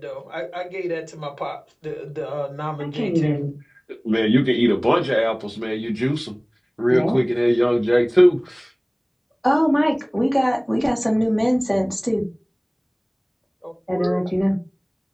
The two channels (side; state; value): both; identical; correlation 1.00